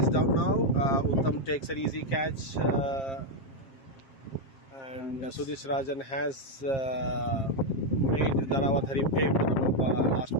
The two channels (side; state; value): right; late; 7.5 ms